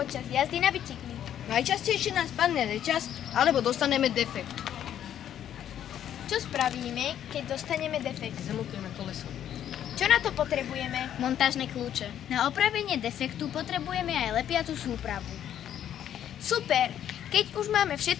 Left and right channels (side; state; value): right; quieter; 10.4 dB